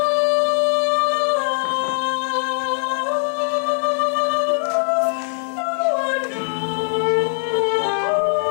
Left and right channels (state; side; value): silent; right; digital silence